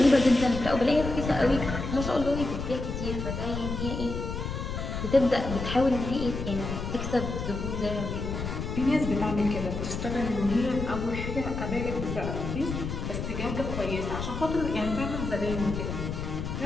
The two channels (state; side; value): noise; left; rumble, 5 dB below the sound